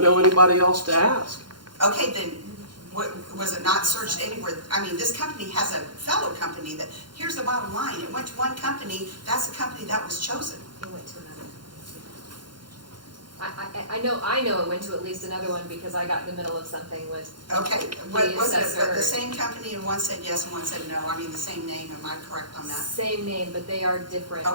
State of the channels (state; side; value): late; left; 0.71 ms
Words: know anybody else to ask. Okay, then was it not searched anywhere? I mean, this company has a fellow company that, here's the bottom line, it went to one company, that's the company that was chosen. It went to another. I know it went to at least another one because I got in the middle of something with Okay, what the was it, but assessor. the same company and one said yes and one said no, I mean, the same name, am I correct on that? Same name, but they are different.